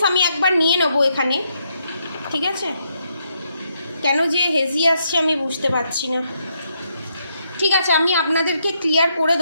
আমি একবার নিয়ে নেবো এখানে, ঠিক আছে? কেন যে হেজি আসছে আমি বুঝতে পারছি না, ঠিক আছে? আমি আপনাদেরকে ক্লিয়ার করে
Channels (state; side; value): inverted; both; correlation -0.77